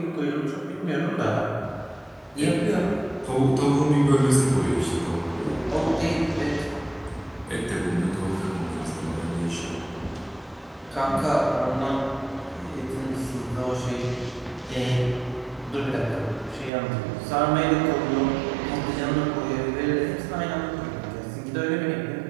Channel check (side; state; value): left; drops out; at 16.7 s